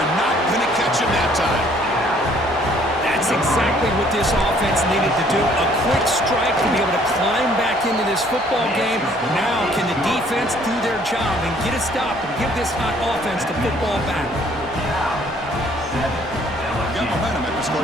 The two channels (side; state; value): both; normal; correlation 0.61